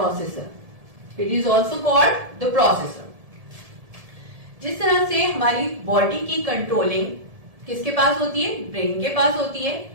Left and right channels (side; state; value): left; late; 1.7 ms